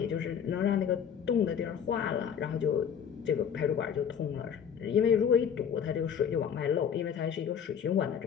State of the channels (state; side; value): quieter; right; 7.9 dB